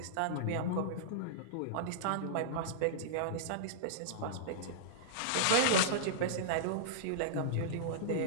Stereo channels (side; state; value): both; different; correlation -0.02